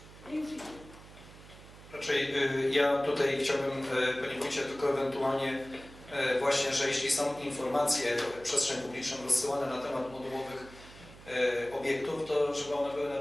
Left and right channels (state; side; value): noise; right; hum, 19 dB below the sound